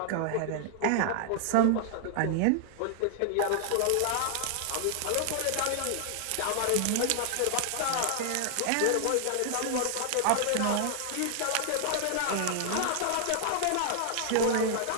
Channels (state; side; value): different; both; correlation 0.00